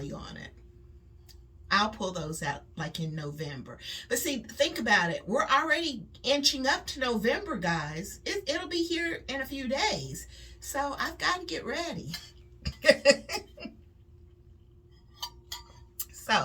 on it. I'll pull those out like in November. But see, think about it. We're already inching up to November, guys. It'll be here in a few days. So I've got to get ready.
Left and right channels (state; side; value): identical; both; correlation 1.00